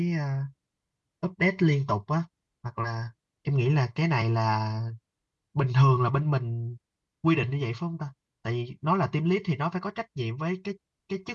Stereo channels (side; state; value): both; identical; correlation 1.00